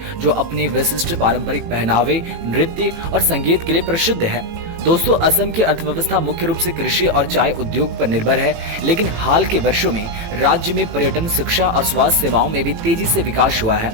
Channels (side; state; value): left; late; 18 ms